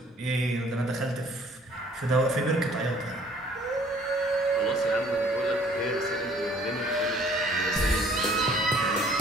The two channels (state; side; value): normal; both; correlation 0.57